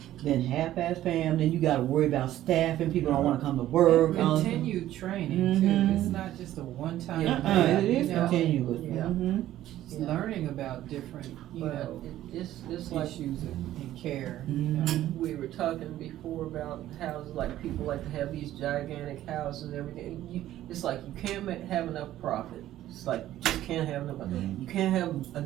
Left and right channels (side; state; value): left; quieter; 13.4 dB